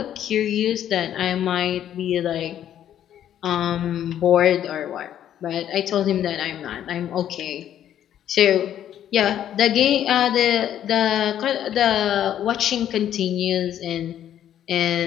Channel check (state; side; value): quieter; right; 10.7 dB